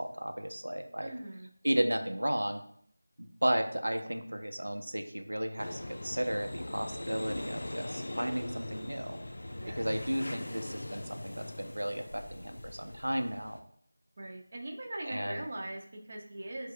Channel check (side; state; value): both; inverted; correlation -0.99